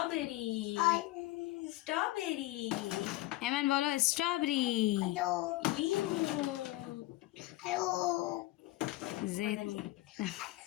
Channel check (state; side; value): quieter; right; 18.2 dB